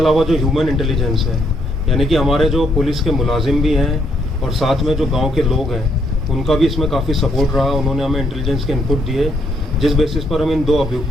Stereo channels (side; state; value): both; normal; correlation 0.73